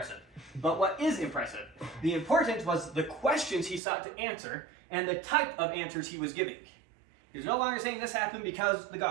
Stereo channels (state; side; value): drops out; left; at 3.8 s